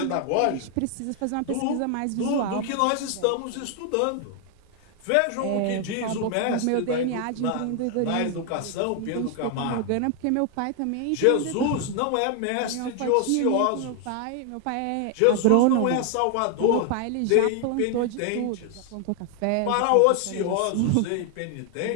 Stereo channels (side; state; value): both; different; correlation 0.00